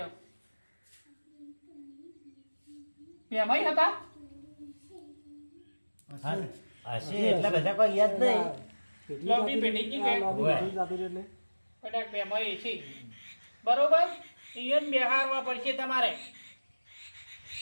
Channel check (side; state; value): both; inverted; correlation -1.00